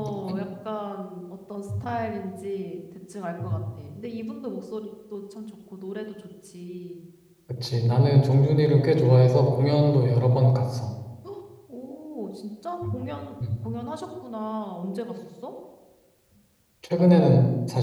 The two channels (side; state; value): both; identical; correlation 1.00